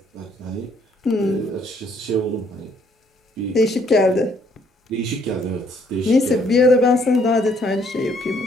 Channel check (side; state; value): both; normal; correlation 0.66